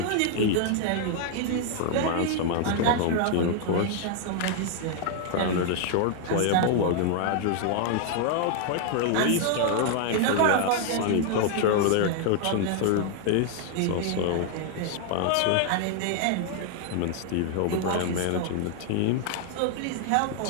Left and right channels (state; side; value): different; both; correlation 0.00